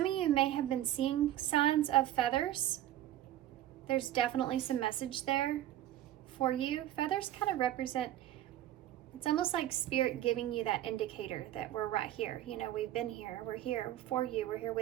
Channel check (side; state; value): left; quieter; 13.1 dB